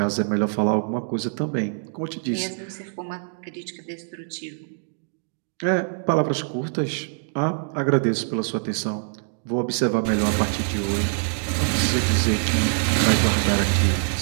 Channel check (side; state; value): left; silent; digital silence